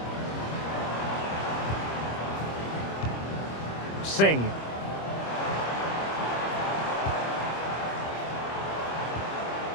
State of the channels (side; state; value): right; late; 25 ms